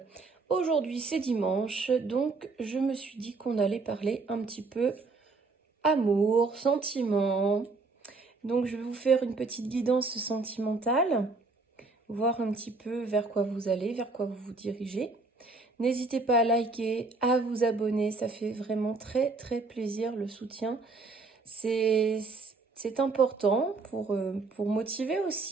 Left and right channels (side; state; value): left; quieter; 3.8 dB